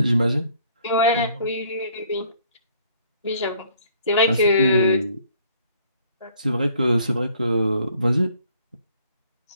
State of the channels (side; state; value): both; inverted; correlation -0.61